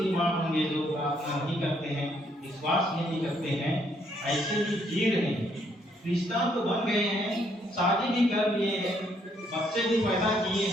माँ होंगे जो प्रार्थना नहीं करते हैं, विश्वास नहीं करते हैं, ऐसे भी जी रहे हैं। क्रिश्चियन तो बन गए हैं, शादी भी कर लिए हैं, बच्चे भी पैदा किए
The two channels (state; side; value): normal; both; correlation 0.70